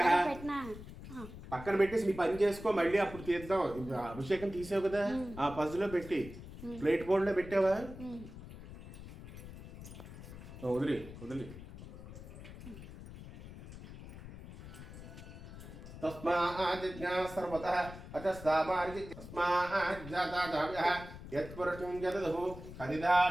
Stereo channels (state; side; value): noise; left; rumble, 13 dB below the sound